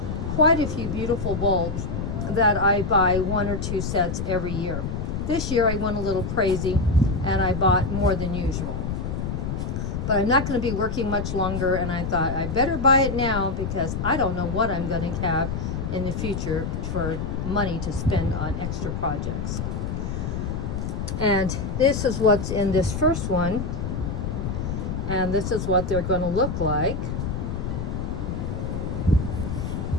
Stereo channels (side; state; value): left; noise; rumble, 3 dB below the sound